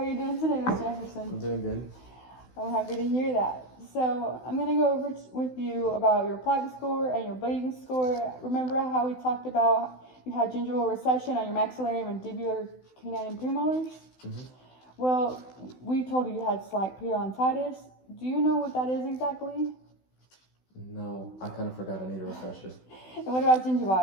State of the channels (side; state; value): right; late; 16 ms